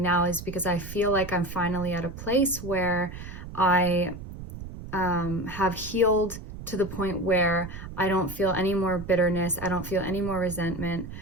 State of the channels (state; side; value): noise; right; rumble, 11 dB below the sound